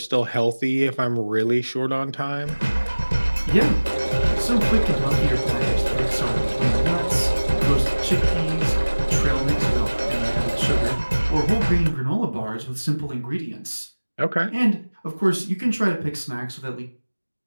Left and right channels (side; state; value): both; inverted; correlation -1.00